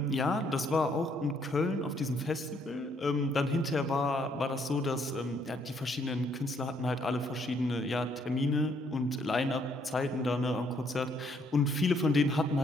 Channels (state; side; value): normal; both; correlation 0.69